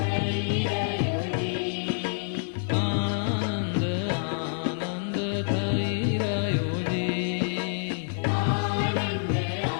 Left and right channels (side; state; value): right; silent; digital silence